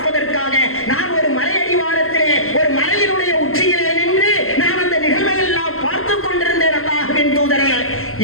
நான் ஒரு மலையடிவாரத்திலே ஒரு மலையினுடைய உச்சியிலே நின்று நான் அந்த நிகழ்வை எல்லாம் பார்த்துக் கொண்டிருந்தேன் அல்லாஹ்வின் தூதரே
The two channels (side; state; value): right; late; 0.62 ms